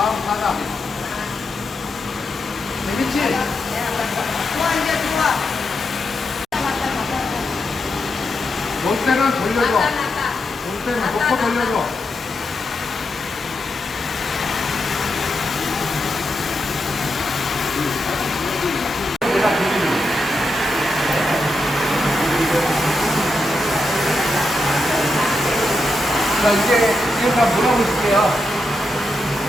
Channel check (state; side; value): normal; both; correlation 0.85